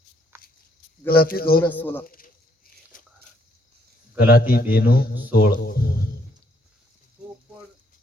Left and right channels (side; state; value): both; normal; correlation 0.69